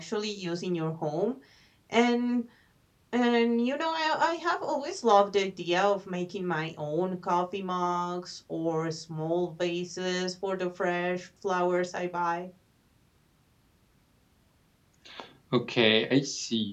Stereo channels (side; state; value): both; identical; correlation 1.00